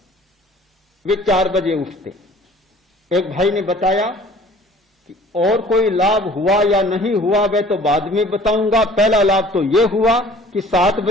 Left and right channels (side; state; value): both; normal; correlation 0.50